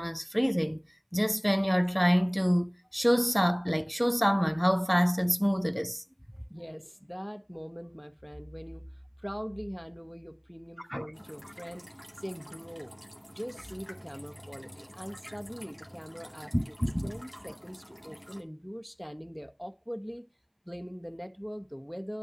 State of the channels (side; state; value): both; identical; correlation 1.00